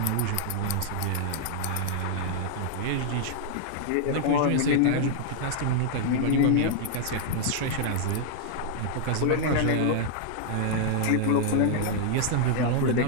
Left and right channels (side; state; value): both; different; correlation -0.01